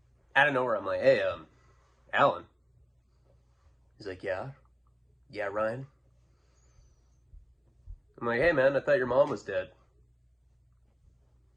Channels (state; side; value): identical; both; correlation 1.00